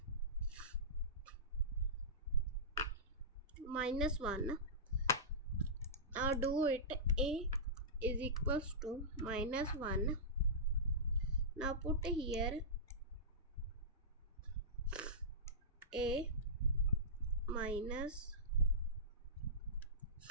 Minus 1. Now do it. A is equals to minus 1. Now put here A minus,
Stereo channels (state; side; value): normal; both; correlation -0.17